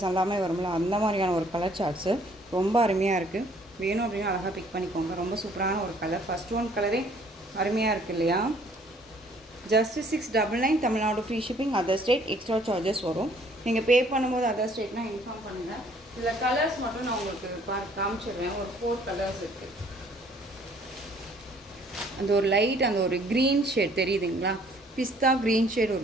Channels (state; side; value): normal; both; correlation 0.60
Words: எல்லாமே வரும்ல, அந்த மாதிரியான ஒரு கலர் சார்ட்ஸு ரொம்ப அருமையாக இருக்குது. வேணும் அப்படின்னா அழகாக பிக் பண்ணிக்கோங்க. ரொம்ப சூப்பரான ஒரு கலர். ஃபஸ்ட் ஒன் கலரே அருமையாக இருக்குது இல்லையா. Just 699, Tamil Nadu free shipping. Other state extra charges வரும். நீங்கள் பே பண்ணும்போது அதர் ஸ்டேட்னால் இன்ஃபார்ம் பண்ணுங்கள். இதில் கலர்ஸ் மட்டும் நான் உங்களுக்கு காமிச்சிடுவேன். ஒரு 4 கலர்ஸ் இருக்குது. அந்த ஒரு லைட், அந்த ஒரு க்ரீன் ஷேட் தெரியுதுங்களா, பிஸ்தா க்ரீன் ஷேட்